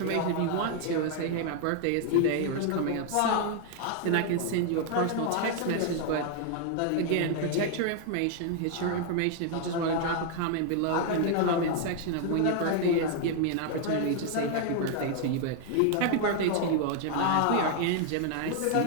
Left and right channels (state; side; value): different; both; correlation 0.00